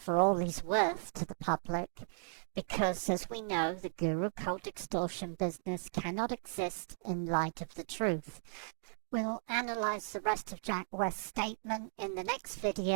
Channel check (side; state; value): left; silent; digital silence